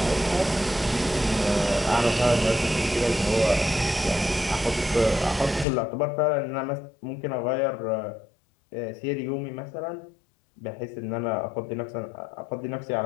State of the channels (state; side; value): drops out; right; at 5.7 s